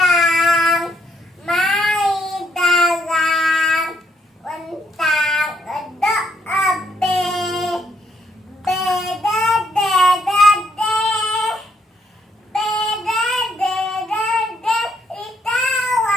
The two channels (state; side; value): normal; both; correlation 0.72